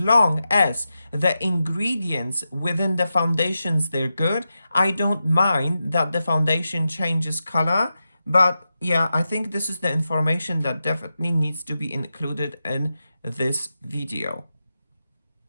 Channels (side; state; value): both; inverted; correlation -0.90